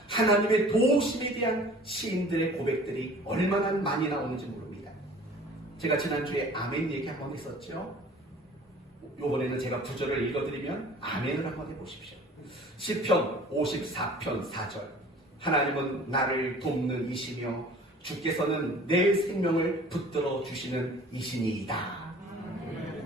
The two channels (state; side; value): normal; both; correlation 0.47